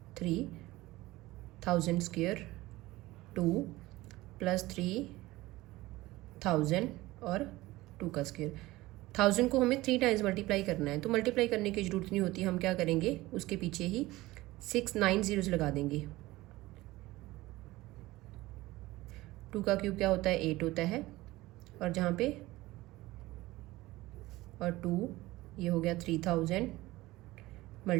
3000 square 2 plus 3000 और 2 का स्क्वायर। 1000 को हमें 3 टाइम्स मल्टीप्लाई करना है, तो मल्टीप्लाई करने की ज़रूरत नहीं होती। हम क्या करेंगे, उसके पीछे ही 6 9 zeros लगा देंगे। 2 का क्यूब क्या होता है, 8 होता है, और जहाँ पे और 2 ये हो गया 3000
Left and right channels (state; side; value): quieter; left; 18.7 dB